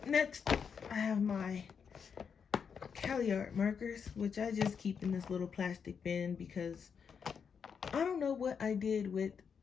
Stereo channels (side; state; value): right; quieter; 6.6 dB